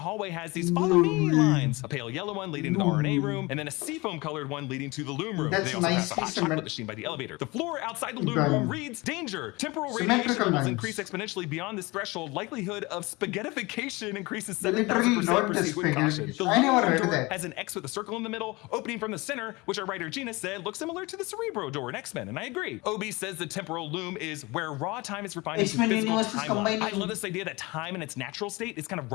hallway has these follow me lines, a pale yellow one leading to the RNA room, and then a seafoam colored one leading to the loom room. They also have a hot chocolate machine by the elevator. The floor outside the loom room reads danger. Temporal radiation levels increase exponentially beyond this threshold. Likelihood of spaghettification increases 7,000%. Proceed with caution. The loom door has an X with a circle in the middle, opening from the center, which our writer Gina said looks similar to the Cerebro door in X-Men, and I agree. Obi says the temporal loom is where raw time is refined into physical timeline. I love this idea that time in its natural state is kind of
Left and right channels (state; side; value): quieter; right; 23.6 dB